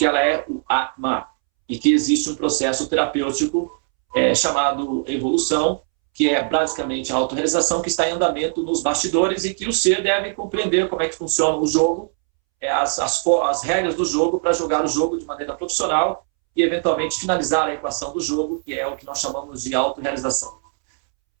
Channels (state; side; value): silent; left; 65 dB below the other